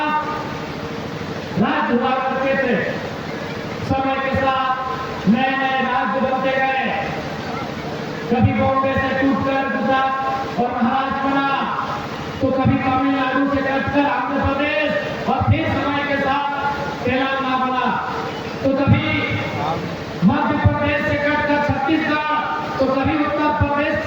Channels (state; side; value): identical; both; correlation 1.00